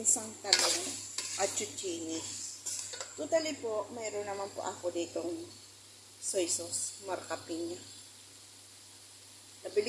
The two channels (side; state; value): both; identical; correlation 1.00